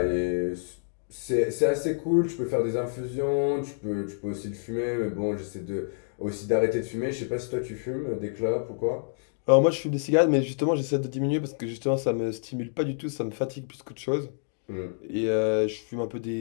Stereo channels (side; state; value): right; silent; digital silence